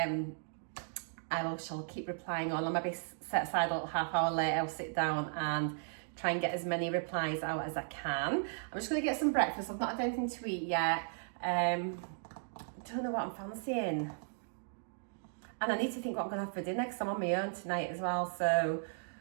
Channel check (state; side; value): silent; left; digital silence